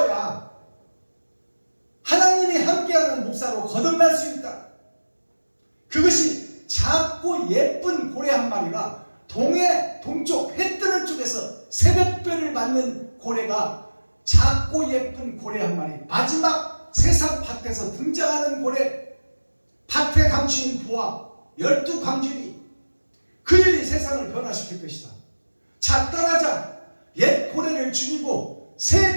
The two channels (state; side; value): inverted; both; correlation -1.00